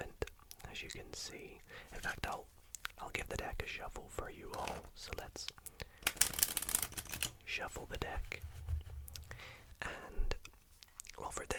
as you can see. In fact, I'll give the deck a shuffle for you all, so let's shuffle the deck. And well, for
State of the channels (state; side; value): identical; both; correlation 1.00